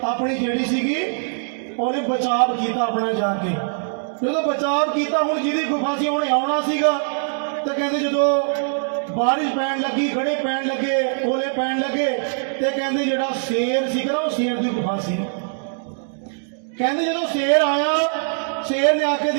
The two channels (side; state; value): left; silent; digital silence